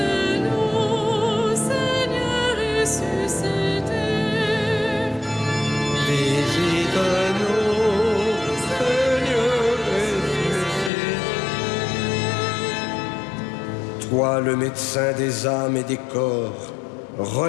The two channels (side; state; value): right; drops out; at 10.9 s